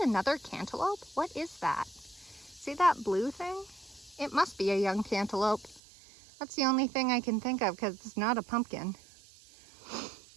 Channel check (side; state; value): left; drops out; at 5.8 s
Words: cantaloupe? What is that? See that blue thing? It must be a young cantaloupe. That's the only thing I can think of because it's not a pumpkin.